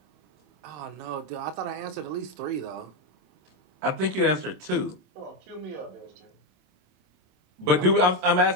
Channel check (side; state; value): left; late; 27 ms